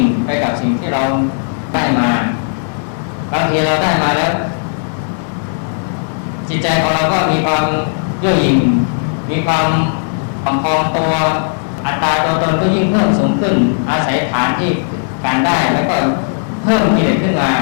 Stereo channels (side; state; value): right; silent; digital silence